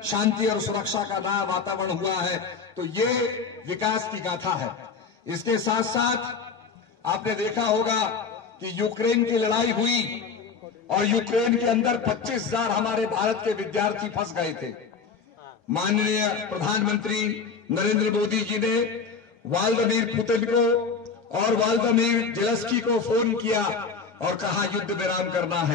शांति और सुरक्षा का नया वातावरण हुआ है। तो ये विकास की गाथा है। इसके साथ साथ आपने देखा होगा कि यूक्रेन की लड़ाई हुई और यूक्रेन के अंदर 25,000 हमारे भारत के विद्यार्थी फंस गए थे। माननीय प्रधानमंत्री नरेंद्र मोदी जी ने व्लादिमीर पुतिन को और व्लादिमीर ज़ेलेंस्की को फोन किया और कहा युद्ध विराम करना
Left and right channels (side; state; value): right; quieter; 5.3 dB